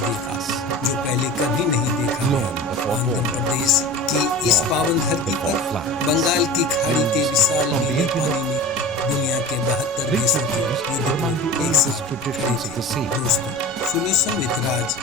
जो पहले कभी नहीं देखा गया। आंध्र प्रदेश की इस पावन धरती पर बंगाल की खाड़ी के विशाल नीले पानी में दुनिया के 72 देशों के युद्धपोत एक साथ खड़े थे। दोस्तों, सोल्यूशन विद राज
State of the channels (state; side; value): normal; both; correlation 0.34